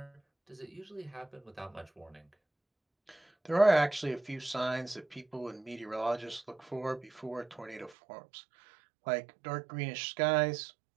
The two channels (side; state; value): left; drops out; at 8.0 s